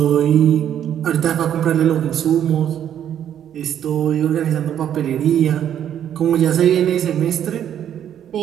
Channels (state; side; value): quieter; left; 9.9 dB